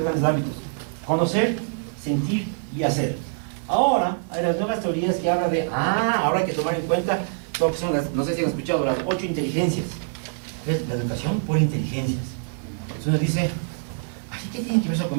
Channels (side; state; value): left; silent; 62 dB below the other